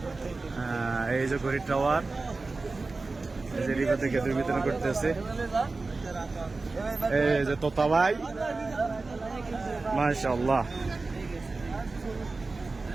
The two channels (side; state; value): left; quieter; 3.6 dB